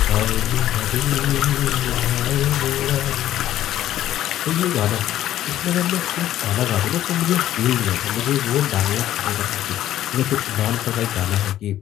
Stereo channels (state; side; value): quieter; right; 12.7 dB